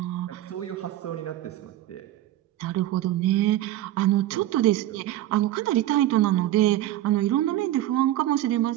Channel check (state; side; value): quieter; left; 13.8 dB